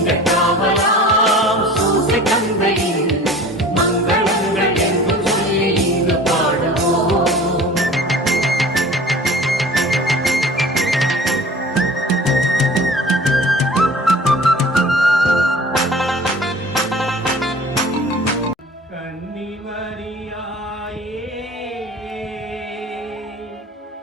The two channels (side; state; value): both; normal; correlation 0.43